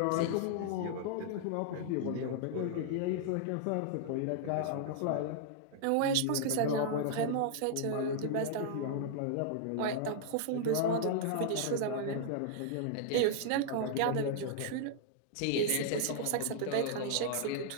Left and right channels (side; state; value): both; different; correlation -0.01